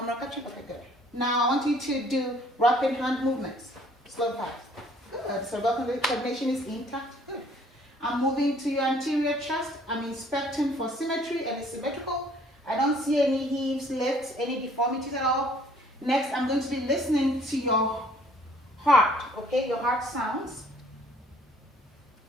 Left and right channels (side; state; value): both; normal; correlation 0.58